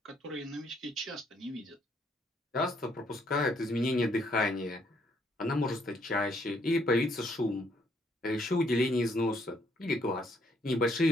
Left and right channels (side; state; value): both; normal; correlation 0.70